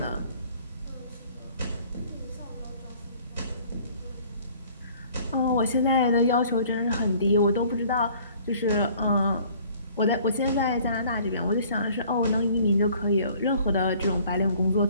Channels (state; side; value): inverted; both; correlation -0.55